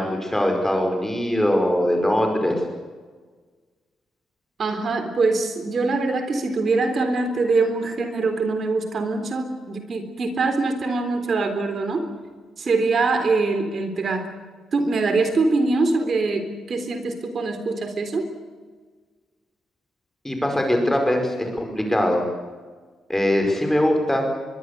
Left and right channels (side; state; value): both; normal; correlation 0.88